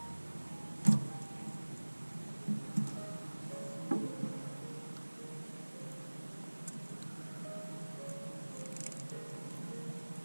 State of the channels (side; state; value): both; inverted; correlation -1.00